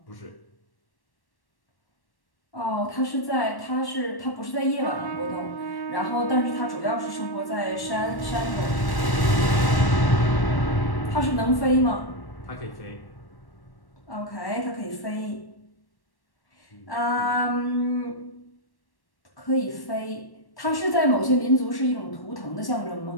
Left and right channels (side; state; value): right; late; 1.1 ms